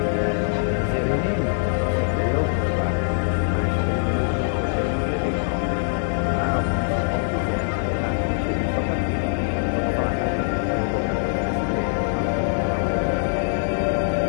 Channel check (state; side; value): silent; right; digital silence